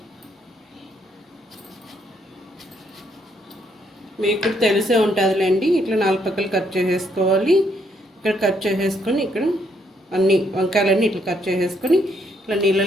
మీకు తెలిసే ఉంటుందిలేండి. ఇట్లా 4 పక్కలు కట్ చేసేసుకోవాలి. ఇక్కడ కట్ చేసేసుకొని ఇక్కడ అన్ని వంకాయలన్నీ ఇట్లా కట్ చేసేసుకొని ఇట్లా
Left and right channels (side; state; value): both; normal; correlation 0.72